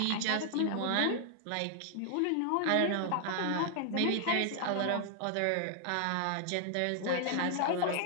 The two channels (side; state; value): both; different; correlation 0.00